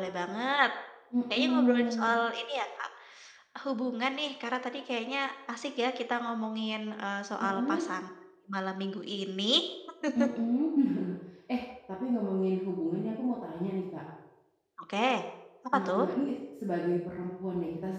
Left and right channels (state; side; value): identical; both; correlation 1.00